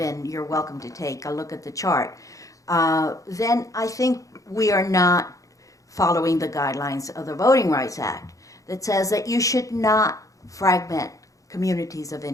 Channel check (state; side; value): late; right; 0.16 ms